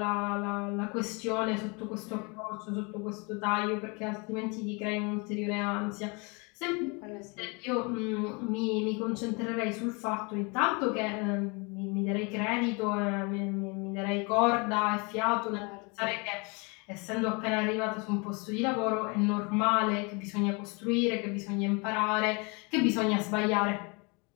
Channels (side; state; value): right; quieter; 30.5 dB